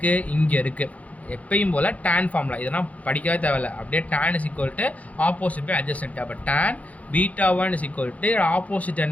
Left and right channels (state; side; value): late; right; 0.069 ms